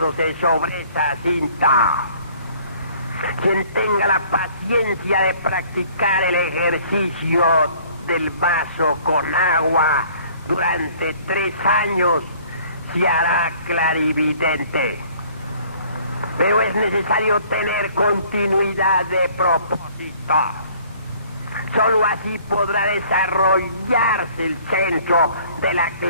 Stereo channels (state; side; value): inverted; both; correlation -0.55